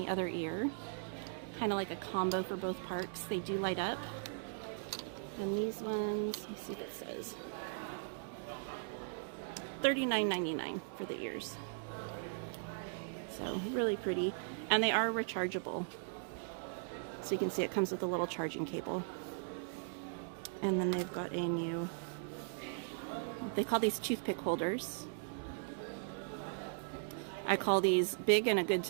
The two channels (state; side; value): silent; left; digital silence